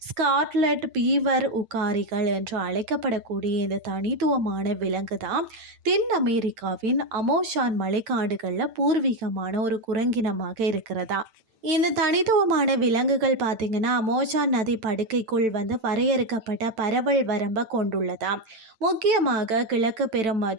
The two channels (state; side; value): late; left; 9.0 ms